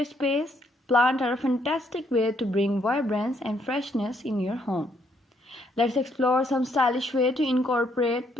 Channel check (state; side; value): normal; both; correlation 0.71